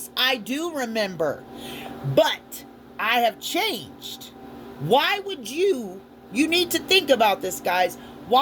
I do remember. But I have changed. Why would you need to think about this, guys.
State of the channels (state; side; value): identical; both; correlation 1.00